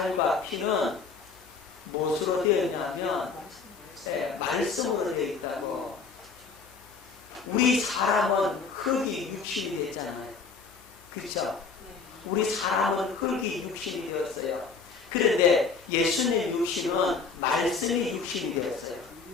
피는 무엇으로 되어 있냐면 말씀으로 되어 있다고. 우리 사람은 흙이 육신이 됐잖아요. 그렇죠? 우리 사람은 흙이 육신이 되었어요. 그런데 예수님 육신은 말씀이 육신이 되었어요.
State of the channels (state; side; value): quieter; right; 4.9 dB